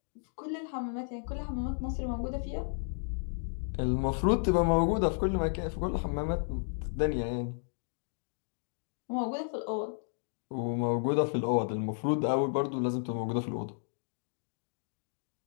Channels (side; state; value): right; silent; digital silence